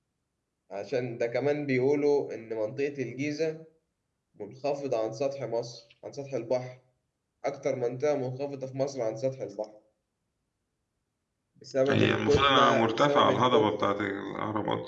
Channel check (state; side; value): identical; both; correlation 1.00